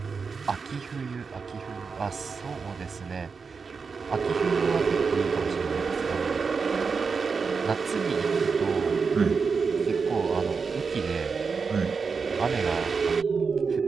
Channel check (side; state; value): left; quieter; 5.2 dB